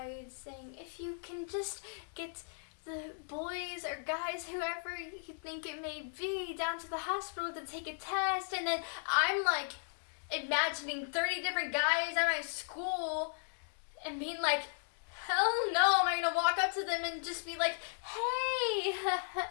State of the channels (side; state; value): right; silent; digital silence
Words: saying, if you can just get the boys or guys, whoever you think it may be, down to the hospital to take a test. And then I'm like imagining 30 different guys at my school and being like, hell no, am I going to walk up to them and just be like, hey,